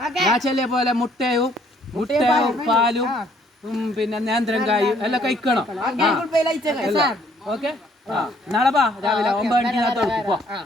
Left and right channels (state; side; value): normal; both; correlation 0.64